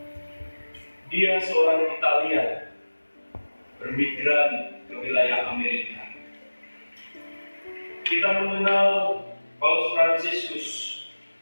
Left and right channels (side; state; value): both; inverted; correlation -1.00